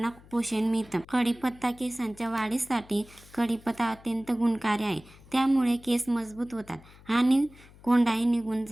पोषण मिळतं. कढीपत्ता केसांच्या वाढीसाठी कढीपत्ता अत्यंत गुणकारी आहे. त्यामुळे केस मजबूत होतात आणि कोंडाही निघून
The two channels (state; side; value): noise; left; hum, 23 dB below the sound